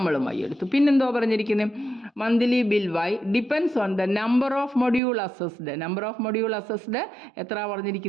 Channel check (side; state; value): left; drops out; at 5.0 s